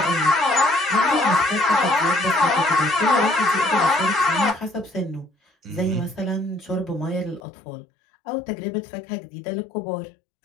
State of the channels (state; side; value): drops out; right; at 7.4 s